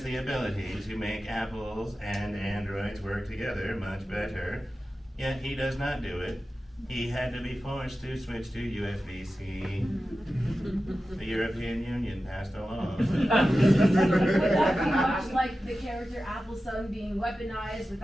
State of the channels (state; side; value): normal; both; correlation 0.93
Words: the ability to make apples and androids work together much better, yet he does not do it. He had to be forced to switch to USB-C. The European Union passed a law. Would that be much like the character Appleson being weaponized